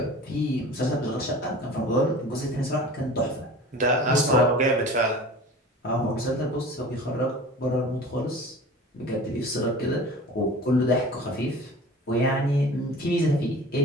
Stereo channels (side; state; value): both; normal; correlation 0.40